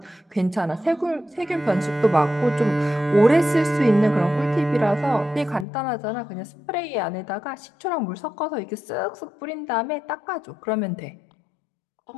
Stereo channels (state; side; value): drops out; right; at 5.7 s